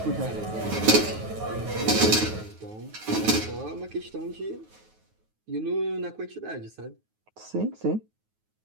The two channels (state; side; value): late; left; 9.4 ms